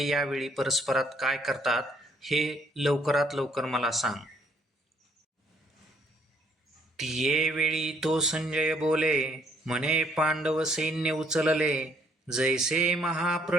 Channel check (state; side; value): normal; both; correlation 0.66